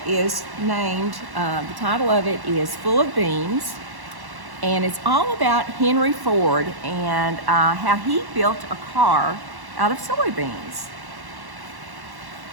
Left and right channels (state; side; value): late; left; 1.1 ms